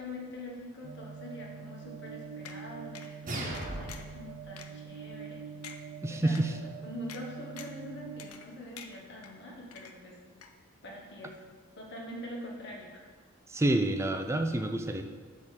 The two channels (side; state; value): both; normal; correlation 0.71